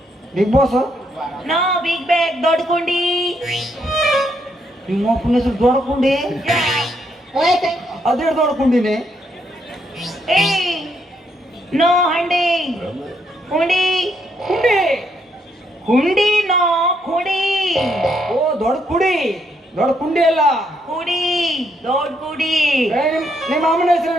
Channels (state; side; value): normal; both; correlation 0.75